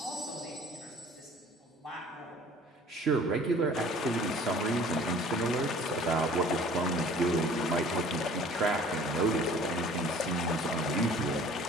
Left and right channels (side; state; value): both; normal; correlation 0.50